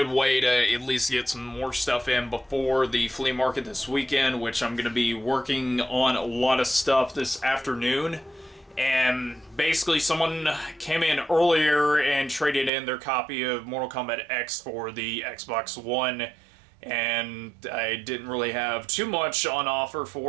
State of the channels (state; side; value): drops out; left; at 12.7 s